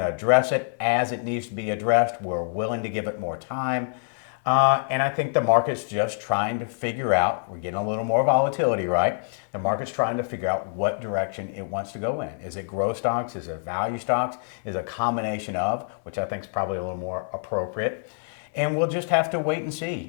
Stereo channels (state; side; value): silent; right; digital silence